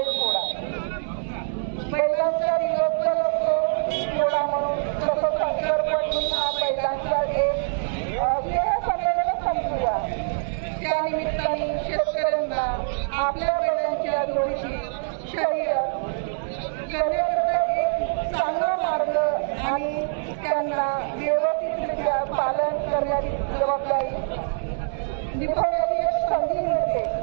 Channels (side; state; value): left; silent; digital silence